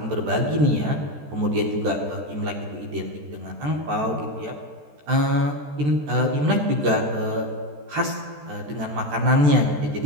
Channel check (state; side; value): late; left; 14 ms